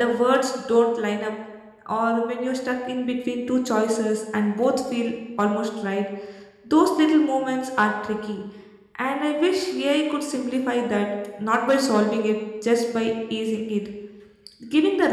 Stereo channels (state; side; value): identical; both; correlation 1.00